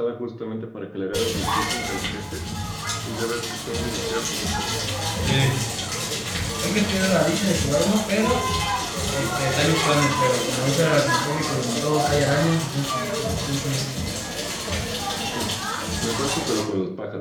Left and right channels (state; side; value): identical; both; correlation 1.00